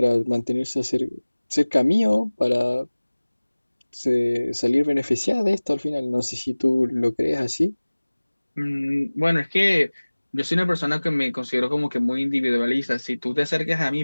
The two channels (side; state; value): both; inverted; correlation -1.00